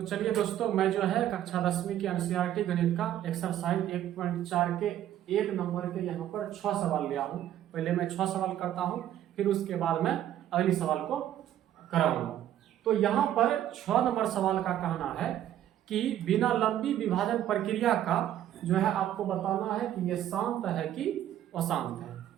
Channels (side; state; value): left; quieter; 11.7 dB